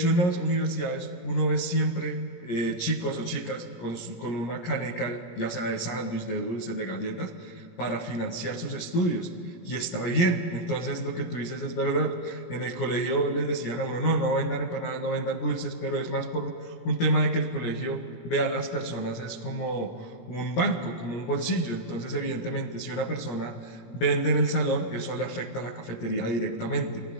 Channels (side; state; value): right; late; 17 ms